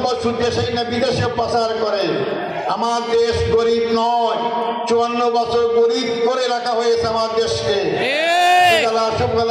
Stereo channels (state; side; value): identical; both; correlation 1.00